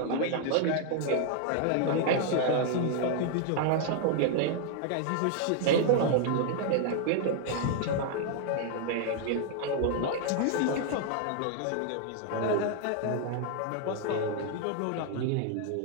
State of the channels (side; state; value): both; different; correlation 0.00